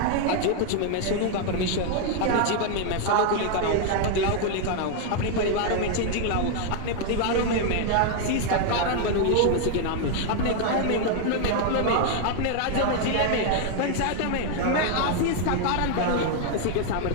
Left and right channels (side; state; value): both; different; correlation 0.00